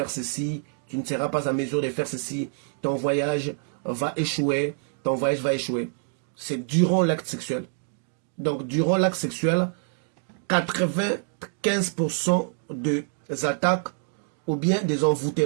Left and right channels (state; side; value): silent; left; 61 dB below the other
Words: ceci, tu ne seras pas à mesure de faire ceci, ton voyage va échouer, ton voyage va échouer. C'est durant l'acte sexuel. Donc, durant l'acte sexuel, 95% des attaques ou bien des